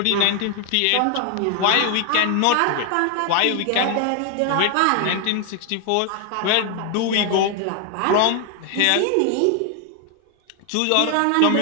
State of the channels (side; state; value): both; different; correlation 0.00